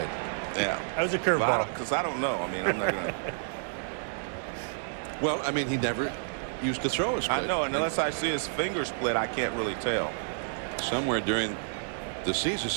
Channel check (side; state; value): left; silent; digital silence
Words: Yeah, that was a curveball. Because I don't know. I mean, I'm not gonna. Well, I mean, he never used to throw a split. I know, and unless I see his finger split, I can't really tell. Somewhere during the season,